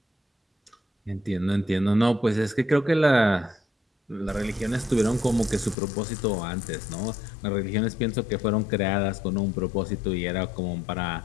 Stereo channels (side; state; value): right; drops out; at 5.8 s